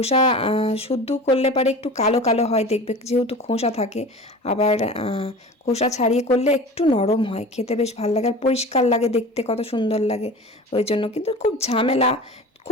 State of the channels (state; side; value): normal; both; correlation 0.37